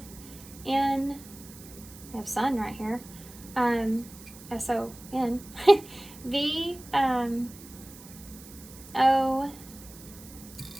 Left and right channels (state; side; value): noise; right; hiss, 18 dB below the sound